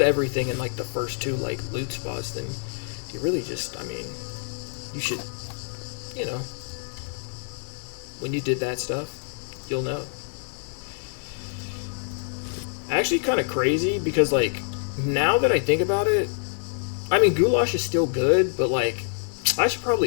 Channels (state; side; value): silent; right; 60 dB below the other